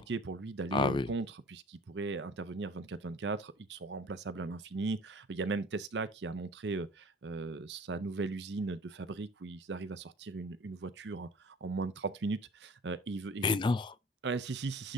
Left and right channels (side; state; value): both; normal; correlation 0.47